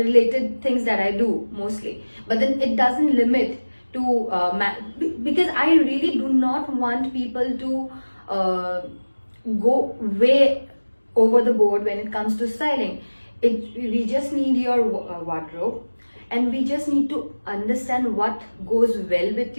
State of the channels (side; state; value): both; inverted; correlation -1.00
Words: things that I do mostly. But then it doesn't limit to because I really do not want people to go way over the board when it comes to styling. We just need your wardrobe, and we just need to understand what goes well with